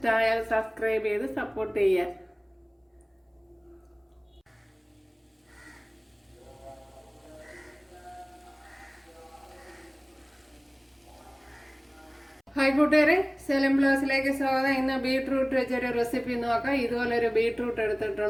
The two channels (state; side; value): identical; both; correlation 1.00